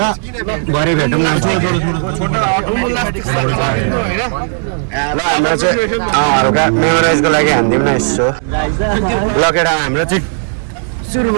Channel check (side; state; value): left; silent; digital silence